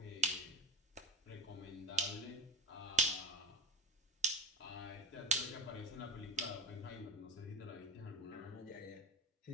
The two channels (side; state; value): both; normal; correlation 0.30